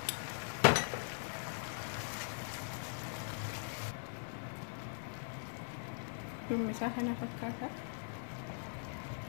Ini misalkan apa kata?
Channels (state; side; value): silent; right; digital silence